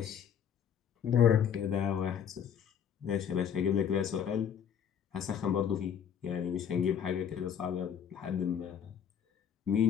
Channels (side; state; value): right; quieter; 8.3 dB